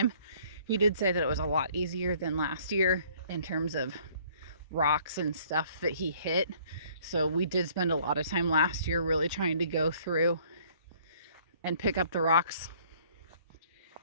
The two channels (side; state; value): both; inverted; correlation -0.58